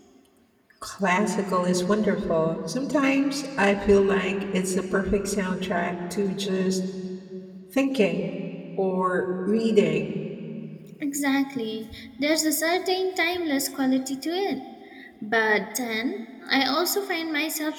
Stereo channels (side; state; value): both; identical; correlation 1.00